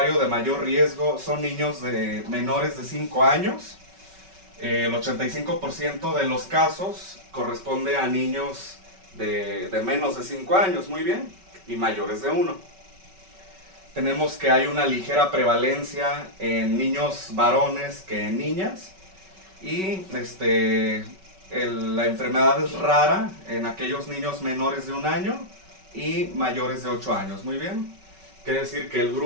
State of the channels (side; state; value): left; late; 5.3 ms